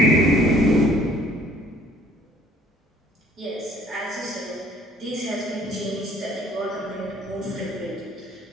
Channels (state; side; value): normal; both; correlation 0.56